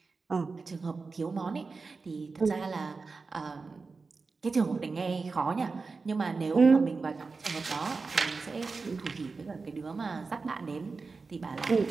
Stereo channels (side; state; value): left; quieter; 4.3 dB